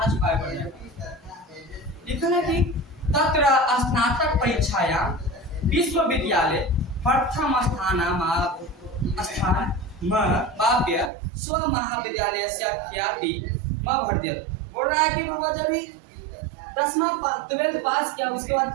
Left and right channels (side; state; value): left; drops out; at 11.1 s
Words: चुकाए पड़ेगा। लिखा है कि तत्र स्नातक परीक्षाया विश्वविद्यालय प्रथम स्थान बाप्य स्व महाविद्यालय से ख्याति भर्ती। बोल रहा है कि बाबा जब 12th पास किया उसके बाद